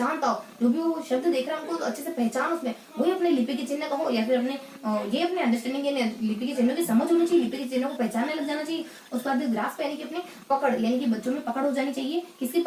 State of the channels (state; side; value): identical; both; correlation 1.00